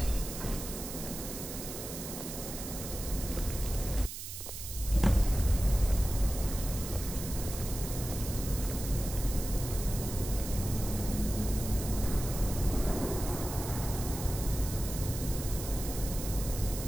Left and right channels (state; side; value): noise; right; hiss, 8 dB below the sound